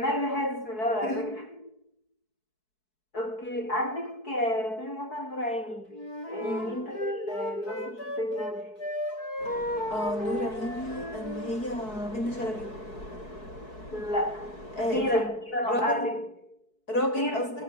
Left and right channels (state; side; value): late; right; 4.6 ms